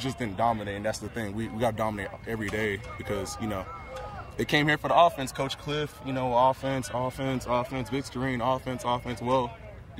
didn't dominate, and that's the thing. We got to dominate every day because, you know, they came here for the offense. Coach Cliff, you know, offense, Vic Starine, offense. Well,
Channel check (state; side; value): identical; both; correlation 1.00